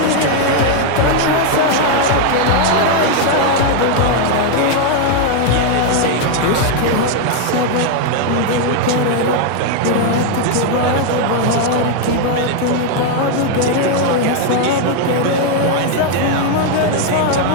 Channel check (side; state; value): both; different; correlation 0.00